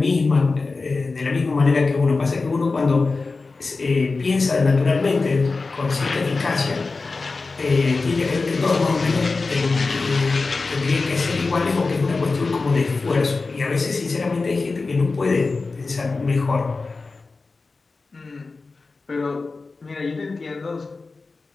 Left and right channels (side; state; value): right; quieter; 3.9 dB